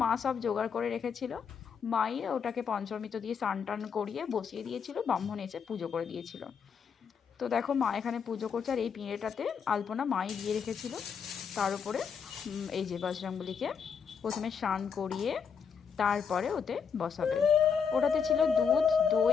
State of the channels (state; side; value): quieter; right; 6.6 dB